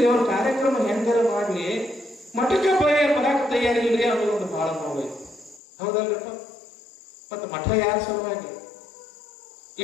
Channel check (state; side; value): drops out; right; at 5.6 s